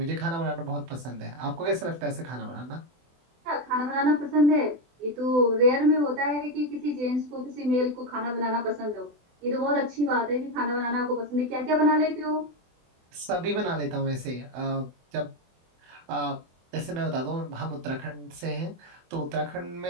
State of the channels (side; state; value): left; late; 24 ms